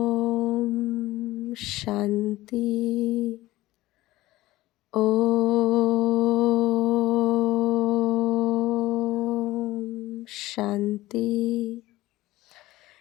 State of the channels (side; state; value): right; quieter; 17.4 dB